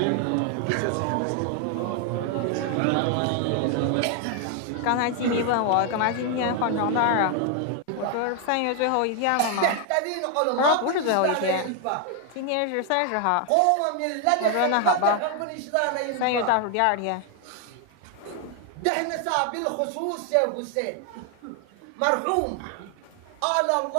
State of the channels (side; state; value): both; different; correlation 0.00